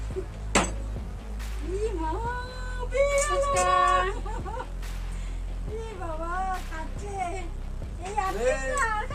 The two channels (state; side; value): identical; both; correlation 1.00